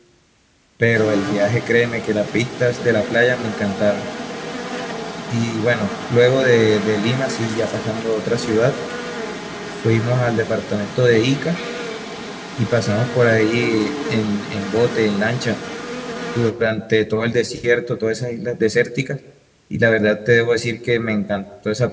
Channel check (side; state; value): both; identical; correlation 1.00